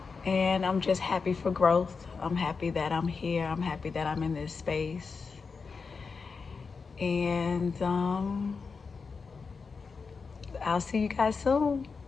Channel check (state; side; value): quieter; right; 5.0 dB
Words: And I'm just happy for growth. I'm happy that I'm here. I'm happy that I'm in this space. And I'll see you guys soon.